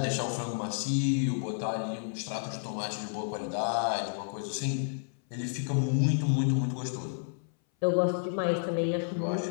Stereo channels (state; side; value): silent; right; 57 dB below the other